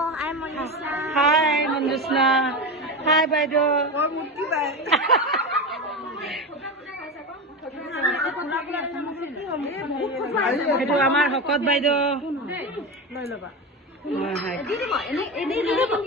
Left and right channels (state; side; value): normal; both; correlation 0.21